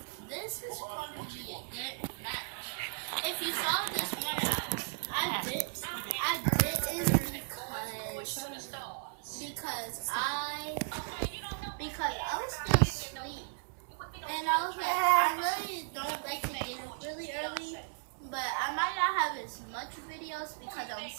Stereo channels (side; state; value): left; silent; 54 dB below the other